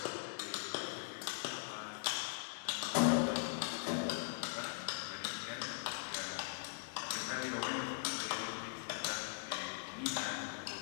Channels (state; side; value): silent; right; 50 dB below the other